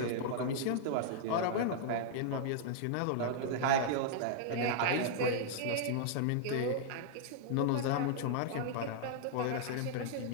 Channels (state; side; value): different; both; correlation -0.01